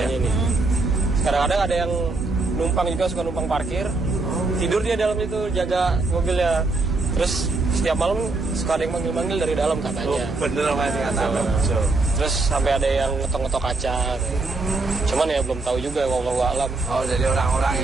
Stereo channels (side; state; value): left; quieter; 3.5 dB